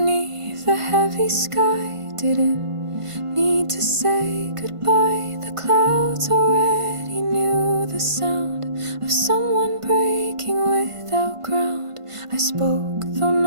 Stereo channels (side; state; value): left; late; 1.5 ms